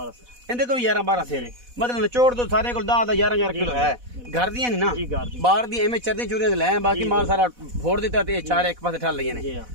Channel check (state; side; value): late; left; 4.1 ms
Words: सर। इंदे को 11-12 सेर है मतलब निचोड़ तो सारे को 10-11 किलो है। घर दियां नहीं ना जी घर दी बाहर दी एवें चरदी चूरियां ले बाकी माल सारा फोड़ दिता ते चार एक पासे ठल लईए ने।